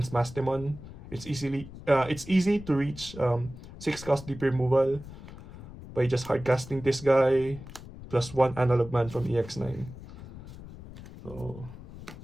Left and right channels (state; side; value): noise; left; rumble, 15 dB below the sound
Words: Mastemon. It's easy to reach 6 cost deep removal by just hard casting this guy plus 1 analog man from EX9. So